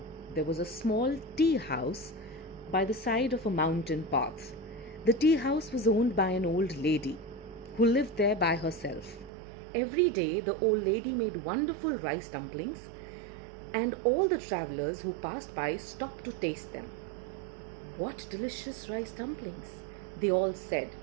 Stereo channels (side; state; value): left; drops out; at 9.3 s